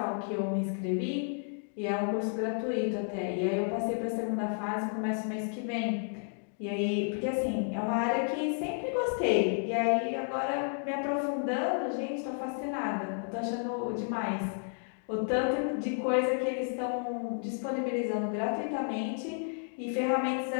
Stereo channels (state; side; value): silent; right; 57 dB below the other